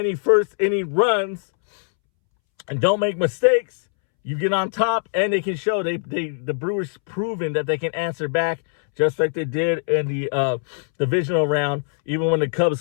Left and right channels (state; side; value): silent; right; 64 dB below the other